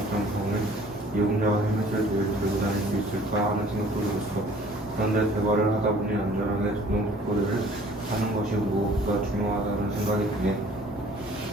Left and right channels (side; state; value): both; normal; correlation 0.53